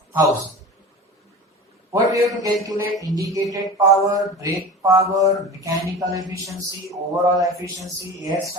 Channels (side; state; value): both; normal; correlation 0.34